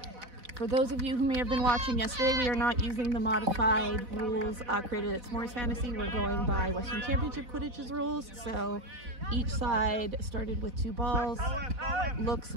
For those of you who may have been watching yesterday, we are not using the modified rules created at S'mores Fantasy. We're going by Western Championship Quidditch's rules. So each side started with 2 balls. Looks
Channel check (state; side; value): late; left; 4.0 ms